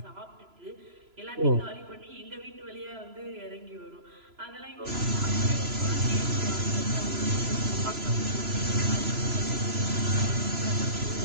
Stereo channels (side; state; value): left; late; 3.0 ms